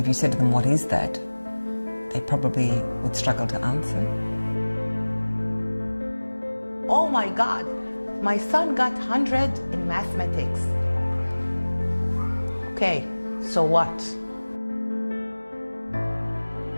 you said to them, what is that? They probably would struggle to answer. Oh my God, my son got 100 in mathematics. Okay, so what?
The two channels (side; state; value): both; inverted; correlation -1.00